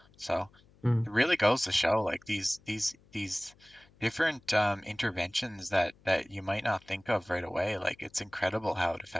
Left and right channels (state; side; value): noise; left; hum, 29 dB below the sound